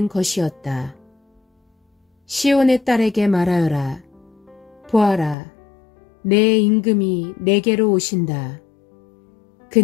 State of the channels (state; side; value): drops out; right; at 5.4 s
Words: 것이었다. 시온의 딸에게 말하여라. 보아라, 내 임금이 내게로 오신다.